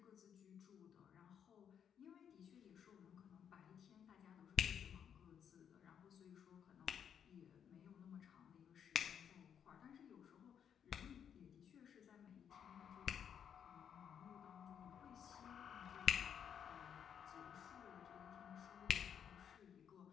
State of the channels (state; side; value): quieter; right; 8.3 dB